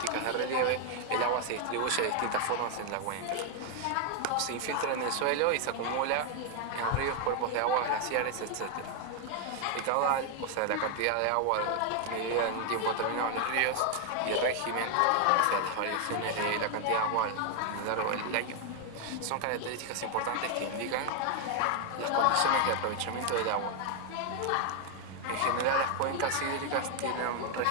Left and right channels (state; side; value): different; both; correlation 0.00